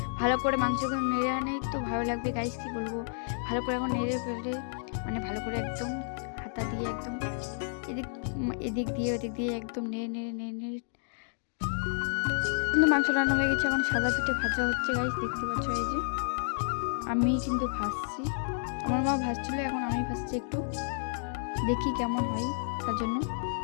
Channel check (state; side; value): silent; right; digital silence